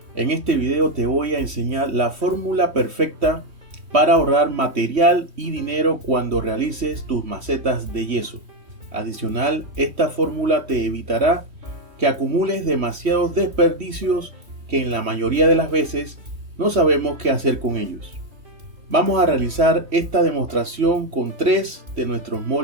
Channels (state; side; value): late; left; 3.1 ms